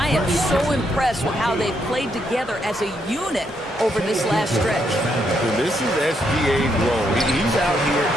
am so impressed with how they've played together as a unit over this last stretch. So this is SGA's role. He's out here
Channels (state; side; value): normal; both; correlation 0.77